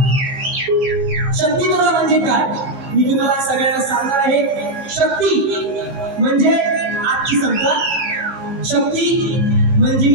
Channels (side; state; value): left; late; 16 ms